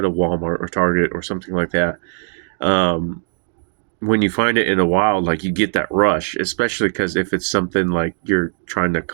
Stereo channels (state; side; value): silent; left; digital silence